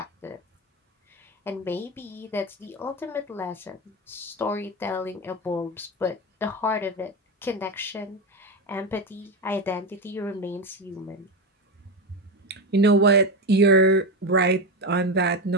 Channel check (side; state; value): both; normal; correlation 0.16